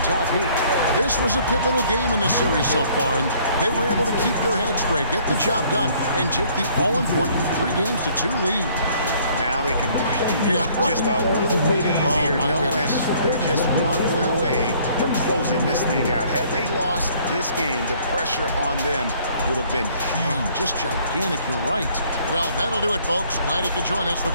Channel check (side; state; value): both; inverted; correlation -0.60